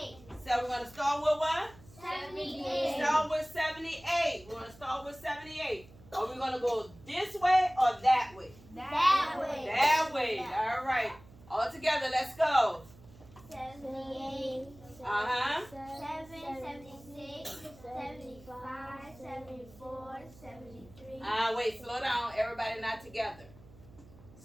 So we're going to start with what? 78. Start with 78. We're going to start with 78. Are we going to go this way or that way? That way. That way. All right. All together, let's go. 78. 7, 76, 75, 74, 73. Wait, slow down. Everybody not together.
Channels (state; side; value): noise; right; hum, 22 dB below the sound